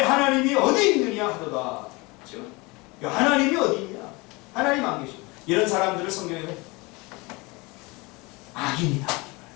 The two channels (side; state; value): right; quieter; 25.3 dB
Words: 하나님이 어디 있느냐 하도다. 그렇죠? 하나님이 어디 있냐? 하나님 안 계셔. 이런 사람들을 성경에는 악인이다.